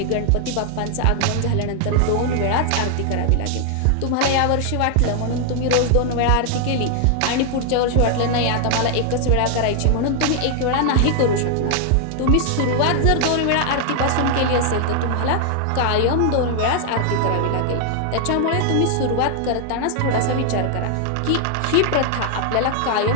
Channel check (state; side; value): different; both; correlation 0.00